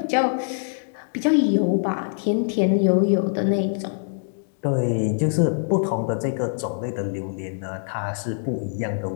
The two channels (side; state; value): right; silent; digital silence